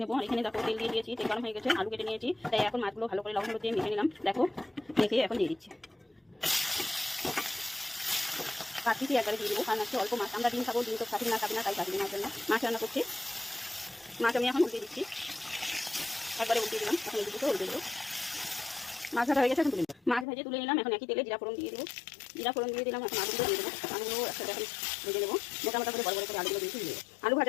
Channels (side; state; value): right; drops out; at 20.2 s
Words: নেবো। আর এখানে দেখো তেল দিয়ে দিয়েছি, তেল গরম হয়ে গেছে, আলু কেটে নিয়েছি, তাই এখন মাছগুলো ভালো করে লবণ হলুদ দিয়ে মেখে নিলাম। দেখো মেখে এখন দিয়ে দিচ্ছি। 5 পিসই একবারে দিয়ে দেবো, কারণ আজকে অল্প মাছ, আমরা ডিম খাবো, ডিম তো খাবি না তাই খাবি না জন্য মাছ রান্না করছি। মাছ আমি এখন উল্টে দিচ্ছি, একবারে উল্টে দিলাম। এখন এই দুটো উল্টে দেবো। মাছ ভাজা হয়ে গেছে, এখন তুলে নিলাম। মাছ ভেজে তুলে নিলাম। এখন একই তেলে জিরা ফোড়ন দিয়ে দেবো, জিরা ফোড়ন দিয়ে দিলাম। এখন আলুগুলো দিয়ে দেবো, আলুগুলো একসাথে এখন ভেজে দেবো। মোটামোটা করে বড় বড় করে আলুগুলো দিয়েছি, দিয়ে আলু